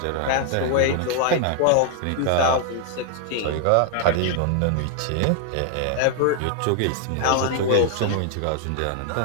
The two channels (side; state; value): both; different; correlation 0.00